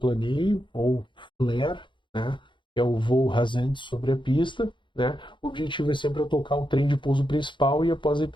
ou flare, né? Que é o voo rasante sobre a pista. Né? O objetivo é sempre eu tocar o trem de pouso principal e após a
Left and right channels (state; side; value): late; right; 0.23 ms